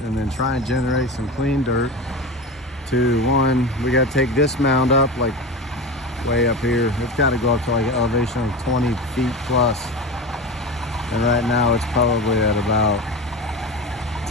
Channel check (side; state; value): both; normal; correlation 0.26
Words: and then try and generate some clean dirt. To one, we gotta take this mound up like way up here. It's gotta go up to like an elevation of 20 feet plus. And right now it's probably at about